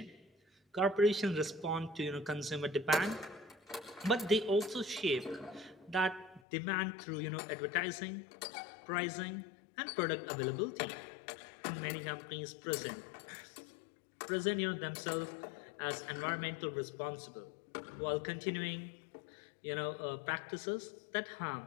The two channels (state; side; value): drops out; right; at 6.4 s